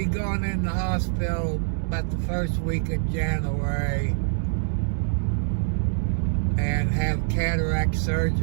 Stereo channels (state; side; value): silent; left; digital silence